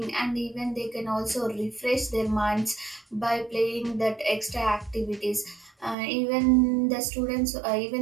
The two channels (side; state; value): left; drops out; at 6.0 s